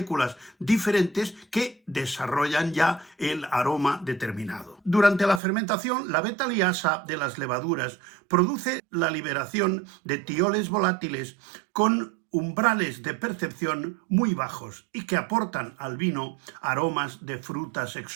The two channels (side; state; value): left; drops out; at 5.4 s